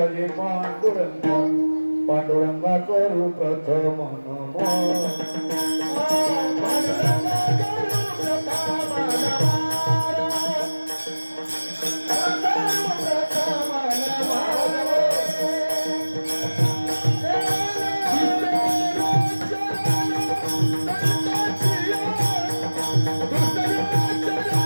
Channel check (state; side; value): inverted; both; correlation -1.00